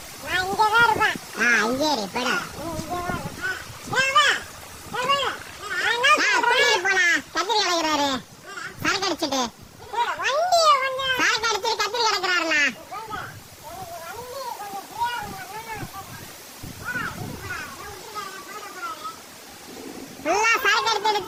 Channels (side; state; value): both; identical; correlation 1.00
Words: நான் இங்கே தான் இருப்பேன். இங்கே இரு பட. கத்திரி கிடக்குறாரு, சரக்கு அடிச்சுட்டு சரக்கு அடிச்சுட்டு கத்திரி கிடக்குறாருண்ணா. ஃபுல்லா சரக்கு